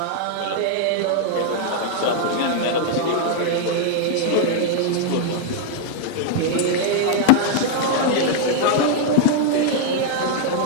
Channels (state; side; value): different; both; correlation 0.00